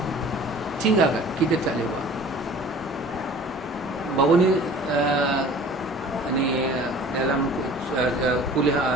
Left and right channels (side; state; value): both; normal; correlation 0.46